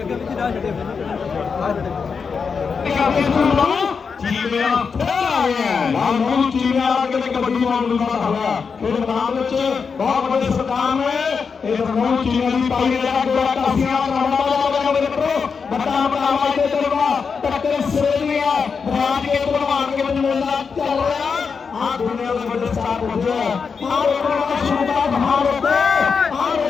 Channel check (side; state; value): right; quieter; 5.6 dB